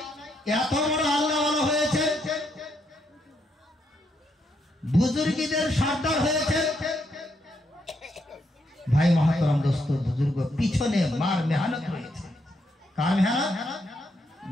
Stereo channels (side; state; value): both; normal; correlation 0.77